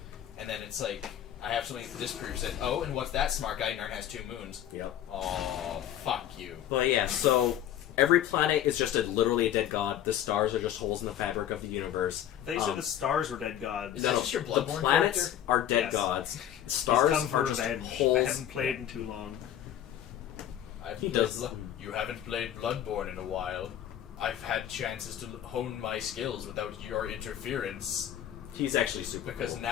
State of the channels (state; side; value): quieter; right; 10.9 dB